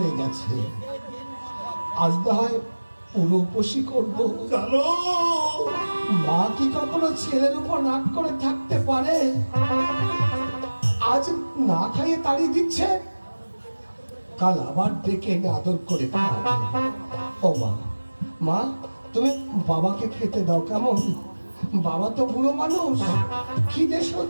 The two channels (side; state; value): both; inverted; correlation -1.00